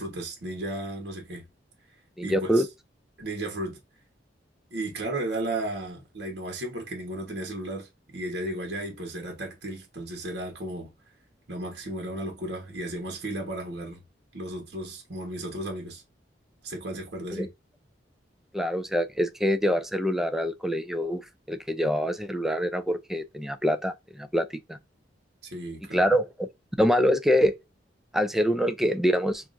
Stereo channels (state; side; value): normal; both; correlation 0.75